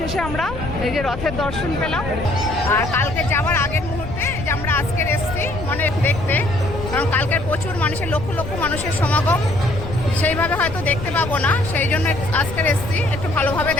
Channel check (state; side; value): noise; left; rumble, 9 dB below the sound